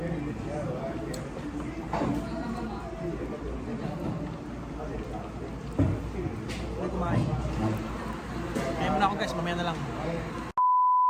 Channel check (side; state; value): both; identical; correlation 1.00